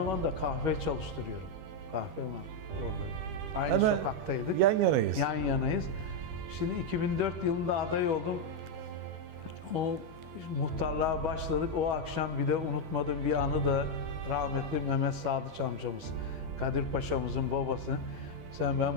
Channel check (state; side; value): late; left; 12 ms